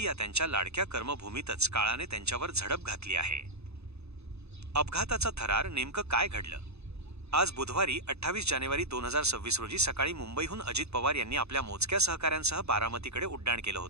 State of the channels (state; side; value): late; left; 0.80 ms